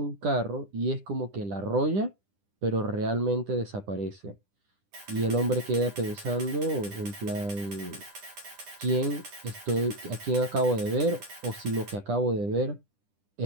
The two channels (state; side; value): late; left; 10 ms